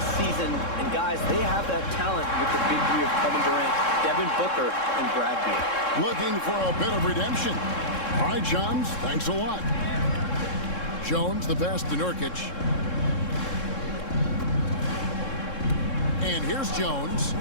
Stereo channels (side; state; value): right; late; 3.7 ms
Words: season, and guys, they have that talent with the big three of Kevin Durant, Devin Booker, and Brad Beal. Looking for a bit of redemption. All right, Shams, thanks a lot. Jones, the pass to Nurkic. And here's Jones.